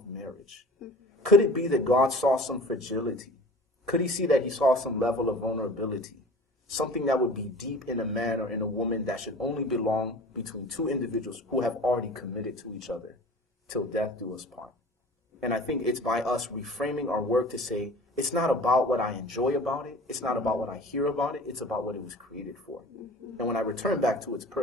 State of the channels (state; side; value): normal; both; correlation 0.42